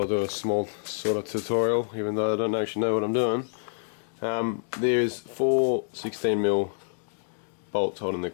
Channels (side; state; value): right; silent; digital silence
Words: do a small sort of tutorial, even though I don't actually know what I'm doing. There's 4 16mm bolts holding the